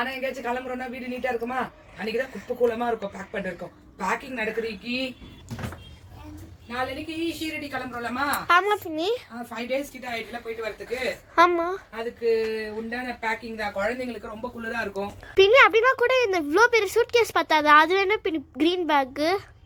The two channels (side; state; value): both; identical; correlation 1.00